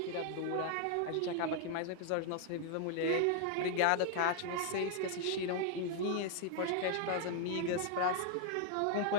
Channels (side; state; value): both; different; correlation 0.00